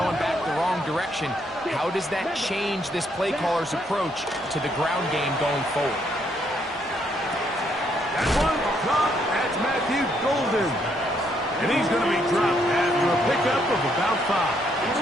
back the wrong direction. How does that change this play caller's approach to the ground game going forward? That one caught. That's Matthew Golden. And he's going to be dropped after a pickup of about 5.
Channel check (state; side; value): normal; both; correlation 0.72